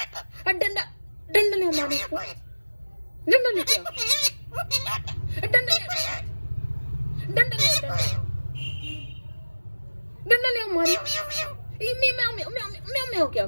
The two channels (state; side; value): inverted; both; correlation -1.00